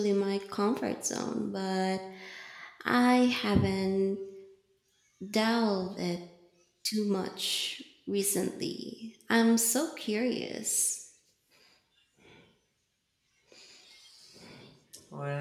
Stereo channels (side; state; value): both; identical; correlation 1.00